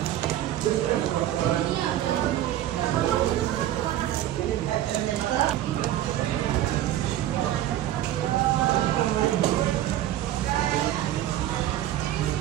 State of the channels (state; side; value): quieter; left; 12.9 dB